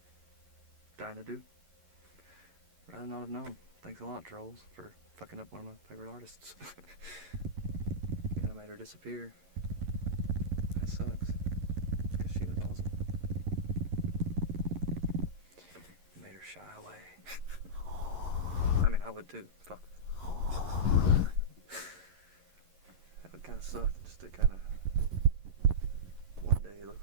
Dying to Do. Rather not have known. Thanks a lot, trolls, for fucking up one of my favorite artists. Kinda made her disappear. That sucks. Because she was awesome. Made her shy away. I mean, I would too. Fuck. That would kinda suck, just to kinda one day look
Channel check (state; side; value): late; left; 11 ms